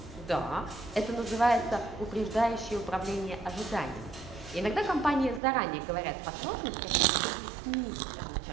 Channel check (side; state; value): left; drops out; at 5.4 s